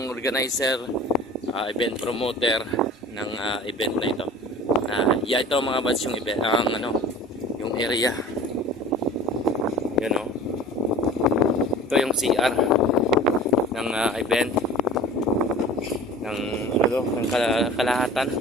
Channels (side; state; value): both; normal; correlation 0.42